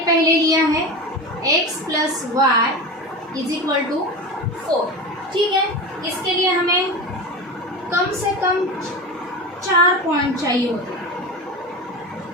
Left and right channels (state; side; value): normal; both; correlation 0.26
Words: लिया है x plus y is equal to 4, ठीक है। इसके लिए हमें कम से कम 4 पॉइंट चाहिए होते हैं।